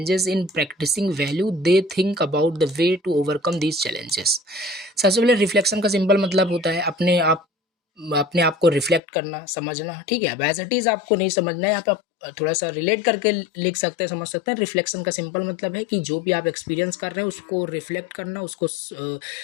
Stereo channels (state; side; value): drops out; right; at 9.0 s